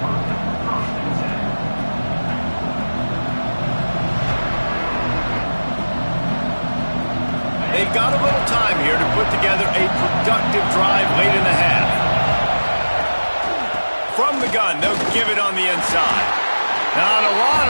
they've got a little time here to put together a productive drive late in the half. From the gun, they'll give it on the inside. Not a lot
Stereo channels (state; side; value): inverted; both; correlation -1.00